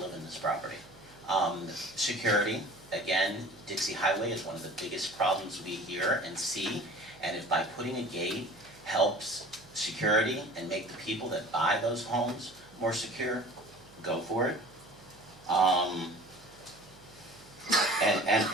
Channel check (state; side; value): noise; right; hum, 24 dB below the sound